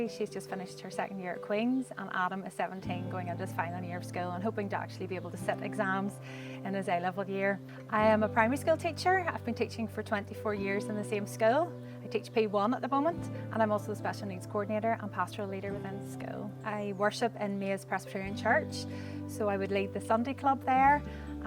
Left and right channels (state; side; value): identical; both; correlation 1.00